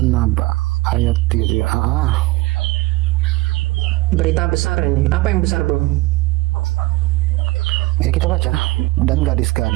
ayat 3. Berita besar ini. Apa yang besar, bro? Ya kita baca. Dan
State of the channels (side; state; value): left; quieter; 20.8 dB